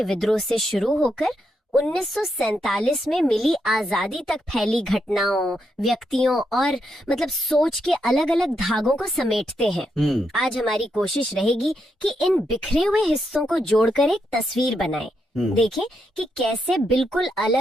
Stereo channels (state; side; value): normal; both; correlation 0.81